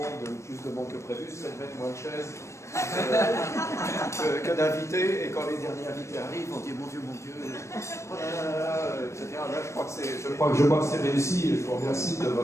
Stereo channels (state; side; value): late; right; 0.14 ms